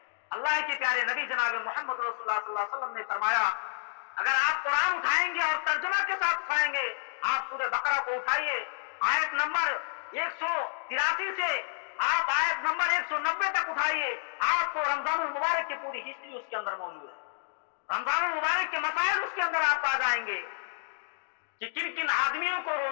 اللہ کے پیارے نبی جناب محمد رسول اللہ صلی اللہ علیہ وسلم نے فرمایا، اگر آپ قرآن اٹھائیں گے اور ترجمہ کے ساتھ اٹھائیں گے، آپ سورہ بقرہ کو اٹھائیے، آیت نمبر 183 سے آپ آیت نمبر 190 تک اٹھائیے، آپ کو رمضان المبارک کی پوری ہسٹری اس کے اندر موجود ہے، رمضان المبارک کے مسائل اس کے اندر آپ پا جائیں گے کہ کن کن آدمیوں کو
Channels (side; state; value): right; silent; digital silence